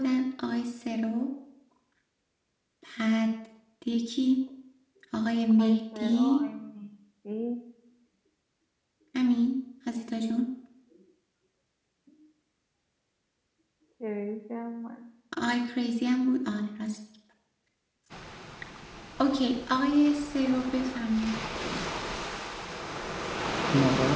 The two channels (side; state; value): both; identical; correlation 1.00